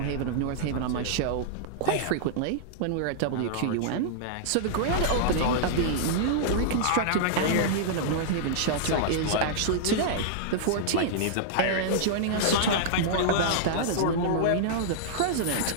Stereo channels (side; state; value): both; different; correlation -0.02